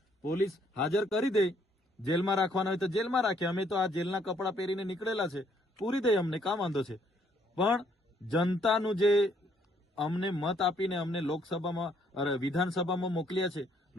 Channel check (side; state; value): both; normal; correlation 0.68